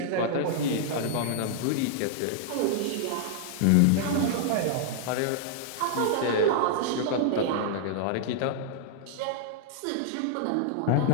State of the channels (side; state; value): both; different; correlation -0.01